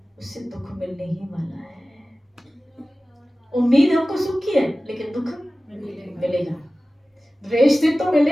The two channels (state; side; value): normal; both; correlation 0.97